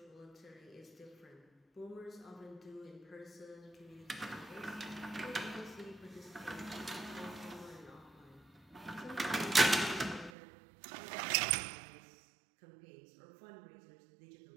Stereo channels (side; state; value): left; drops out; at 10.3 s